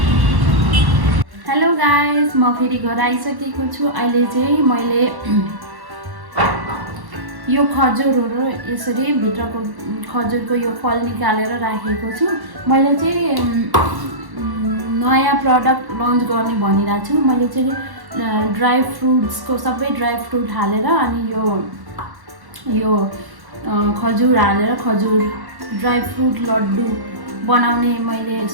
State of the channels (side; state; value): left; late; 1.1 ms